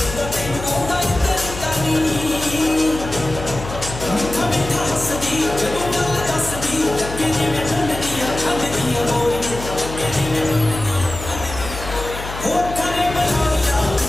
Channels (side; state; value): left; noise; hum, 10 dB below the sound